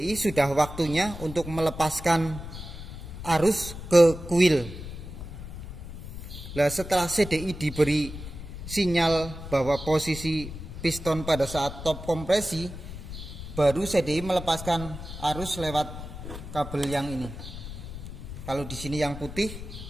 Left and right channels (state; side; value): noise; left; rumble, 10 dB below the sound